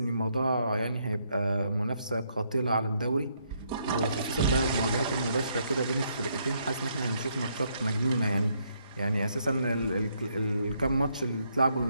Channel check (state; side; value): inverted; both; correlation -0.74